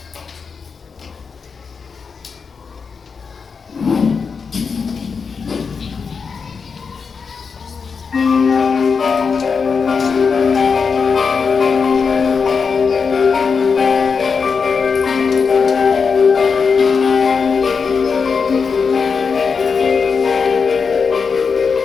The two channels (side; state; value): right; quieter; 5.5 dB